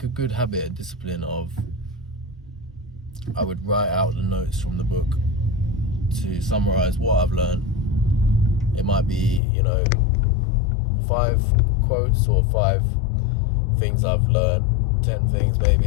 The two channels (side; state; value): right; drops out; at 9.4 s